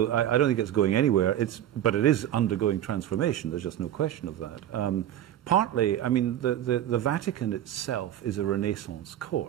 I don't think it's going anywhere, but it is undergoing transformation, there's just no question of that. Partly, I mean, the Vatican itself is a Renaissance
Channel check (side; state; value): left; quieter; 11.7 dB